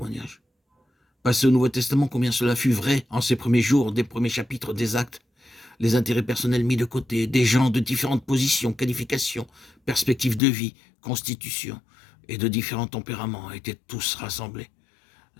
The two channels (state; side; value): drops out; right; at 10.4 s